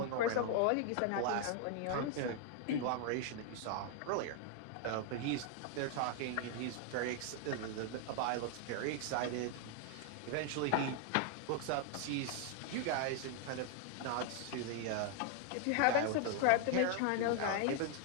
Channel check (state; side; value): different; both; correlation 0.00